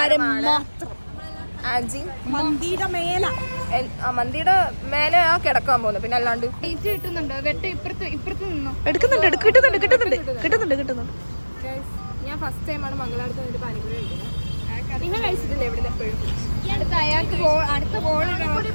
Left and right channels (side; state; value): both; inverted; correlation -1.00